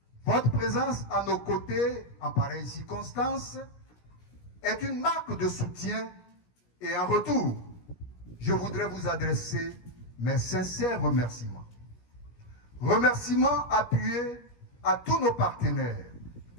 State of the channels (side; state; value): right; late; 17 ms